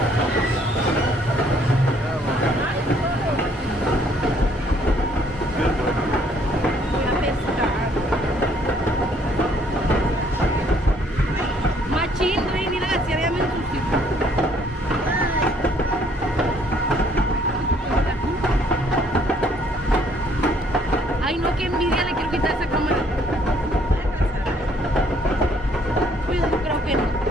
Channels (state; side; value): normal; both; correlation 0.64